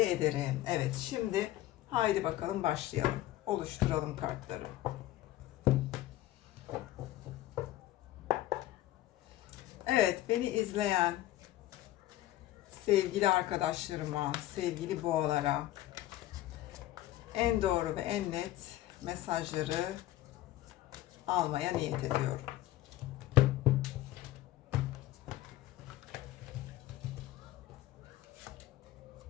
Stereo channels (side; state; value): right; quieter; 15.1 dB